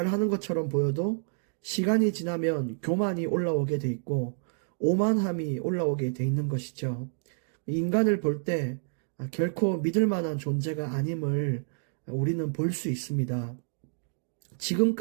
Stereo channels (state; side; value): silent; left; digital silence